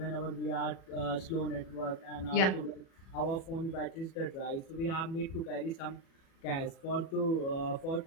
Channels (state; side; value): late; right; 37 ms